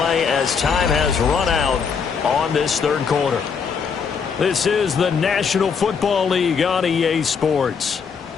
as time has run out on this third quarter. This is the National Football League on EA Sports.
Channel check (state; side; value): quieter; right; 6.1 dB